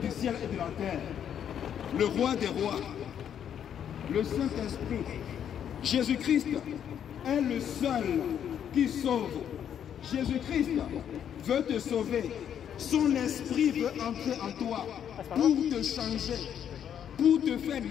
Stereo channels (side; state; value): right; quieter; 9.1 dB